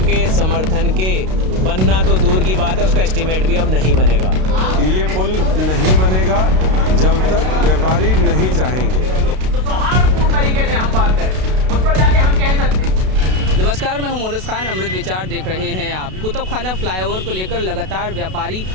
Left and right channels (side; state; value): left; late; 32 ms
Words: समर्थन के बनना तो दूर की बात है, उसका एस्टीमेट भी अब नहीं बनेगा। ये पुल नहीं बनेगा जब तक व्यापारी नहीं चाहेंगे। तो सौहार्दपूर्ण तरीके से हम बात करें, उस पर जाके हम कह सकते हैं। नमस्कार, मैं हूं मोनिस खान। अमृत विचार देख रहे हैं आप। कुतुब खाना फ्लाईओवर को लेकर लगातार व्यापारी